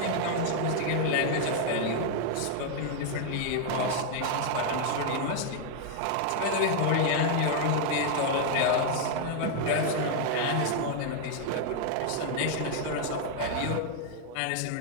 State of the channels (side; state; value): both; different; correlation 0.00